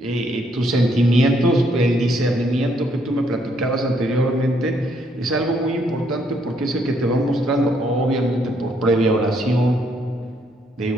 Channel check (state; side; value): normal; both; correlation 0.71